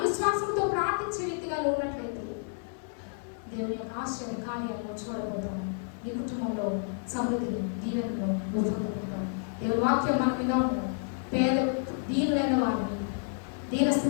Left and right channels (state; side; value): silent; right; 58 dB below the other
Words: విశ్వాసంతో ప్రార్థించే వ్యక్తిగా ఉన్నట్లయితే దేవుని యొక్క ఆశ్చర్య కార్యాలను చూడబోతాము. నీ కుటుంబంలో సమృద్ధిని దీవెనలో నువ్వు పొందుకుంటావు. దేవుని వాక్యం మన మీద ఉన్నాడు. పేద దీనులైన వారిని,